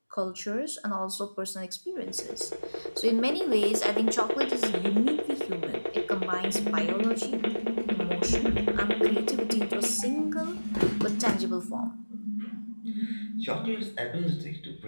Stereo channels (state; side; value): inverted; both; correlation -1.00